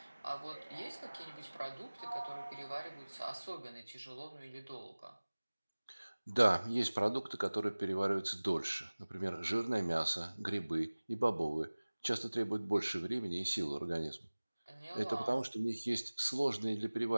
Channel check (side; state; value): both; inverted; correlation -1.00